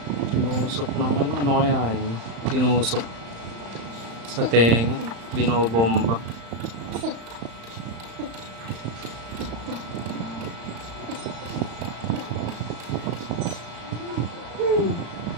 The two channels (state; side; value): late; left; 35 ms